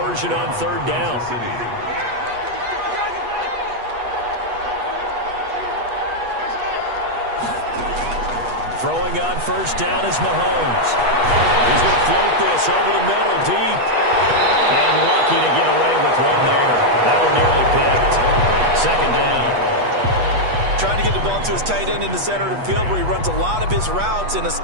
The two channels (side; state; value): left; late; 8.3 ms